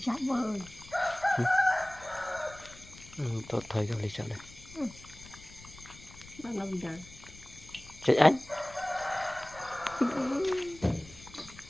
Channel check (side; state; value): left; noise; rumble, 19 dB below the sound